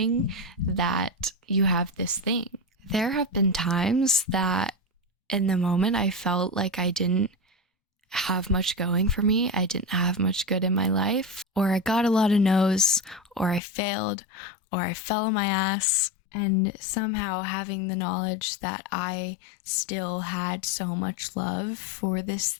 that you have this thing. There have been times that in the moment, I felt like I didn't have much going for me. I didn't have much good in my life, or I got a lot of no's, or I failed, or I fell on my ass. And somehow having the knowledge that I still had so much love for this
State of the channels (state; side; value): drops out; right; at 13.6 s